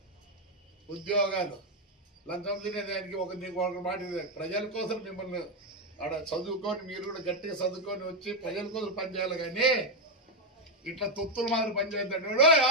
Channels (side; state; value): both; normal; correlation 0.04